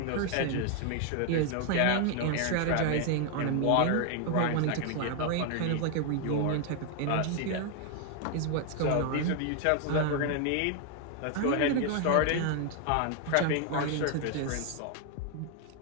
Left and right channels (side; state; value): both; different; correlation 0.01